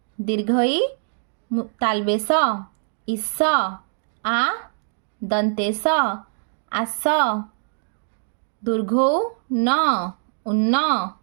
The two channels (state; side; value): silent; left; digital silence